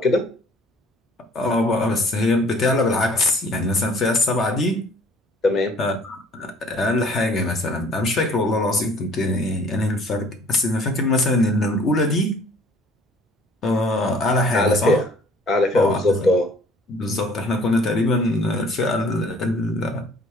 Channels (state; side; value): normal; both; correlation 0.54